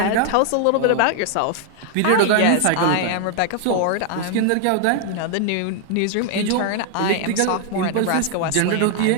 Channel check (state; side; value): different; both; correlation 0.00